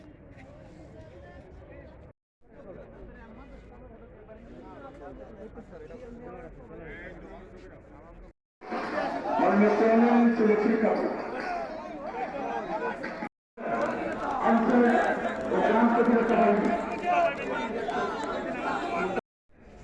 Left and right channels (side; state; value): both; identical; correlation 1.00